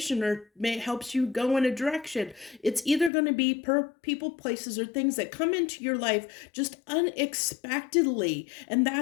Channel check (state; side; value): drops out; right; at 3.1 s